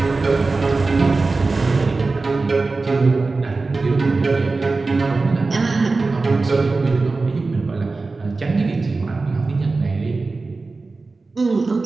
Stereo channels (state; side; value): quieter; left; 3.7 dB